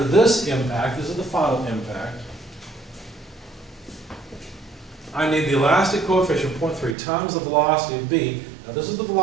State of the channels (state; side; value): drops out; left; at 7.0 s